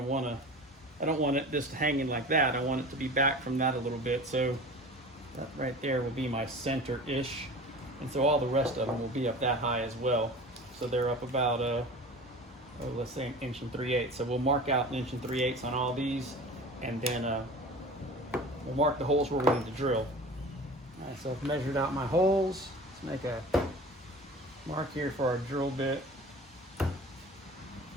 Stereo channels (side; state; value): both; normal; correlation 0.37